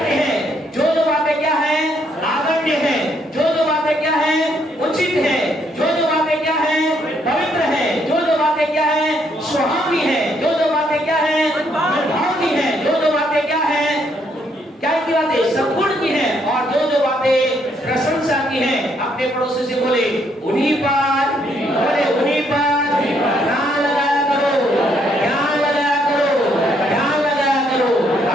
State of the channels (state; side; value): normal; both; correlation 0.71